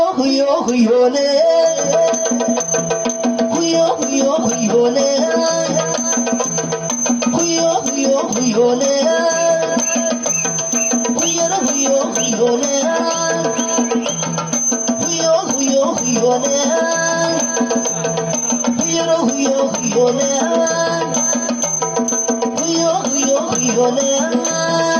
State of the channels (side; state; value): both; identical; correlation 1.00